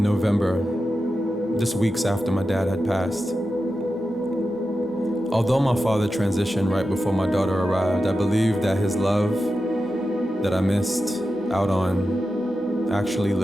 November, just weeks after my dad had passed. Although my father transitioned right before my daughter arrived, I believe that his love that I missed out on actually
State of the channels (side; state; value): both; normal; correlation 0.91